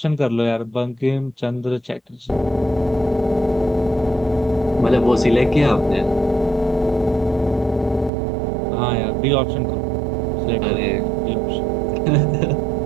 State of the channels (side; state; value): left; drops out; at 8.1 s